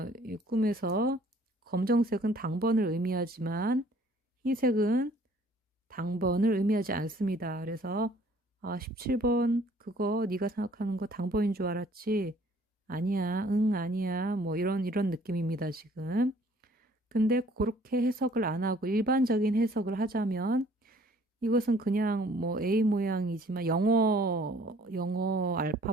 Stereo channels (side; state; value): both; normal; correlation 0.57